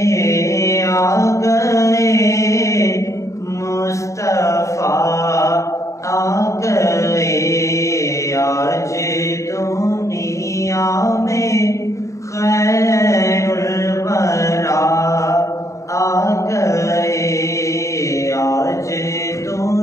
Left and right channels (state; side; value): late; right; 0.15 ms